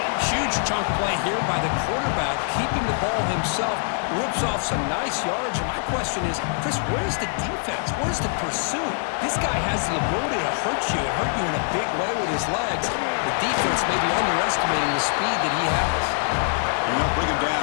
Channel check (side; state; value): right; silent; 63 dB below the other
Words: Huge chunk play here by the quarterback, keeping the ball himself, rips off some nice yards. And my question is, Chris, where's the defense? Where's the pursuit? This guy has the ability to hurt you in a big way with his legs. The defense may be underestimating the speed that he has. And they'll bring him